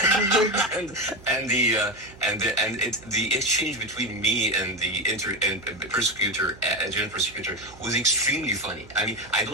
and the exchange between me and the persecutor, general prosecutor, was extremely funny. I mean, I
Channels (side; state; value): right; noise; hum, 21 dB below the sound